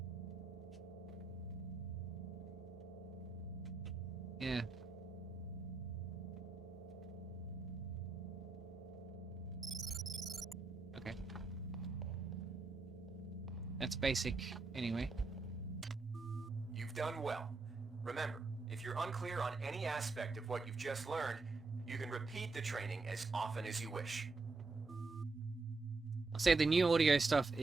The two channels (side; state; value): left; quieter; 3.8 dB